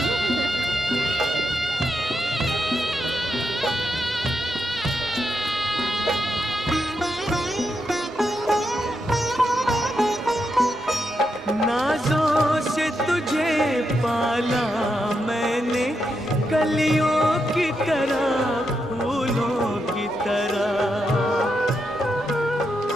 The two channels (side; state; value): both; normal; correlation 0.83